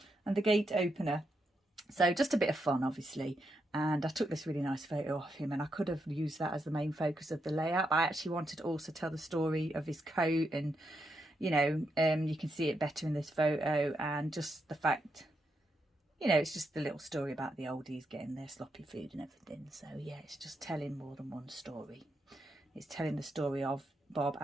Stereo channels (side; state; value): both; normal; correlation 0.82